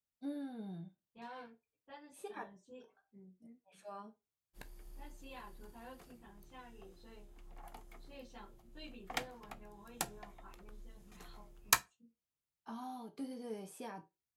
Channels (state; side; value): identical; both; correlation 1.00